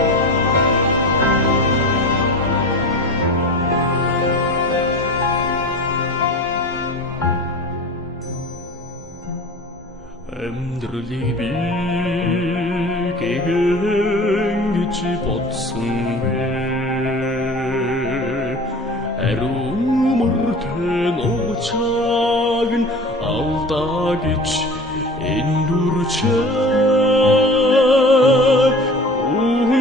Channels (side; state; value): both; normal; correlation 0.37